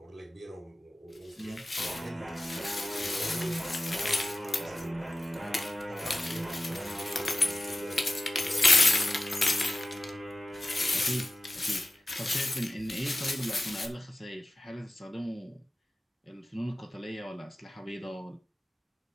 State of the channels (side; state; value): both; normal; correlation 0.95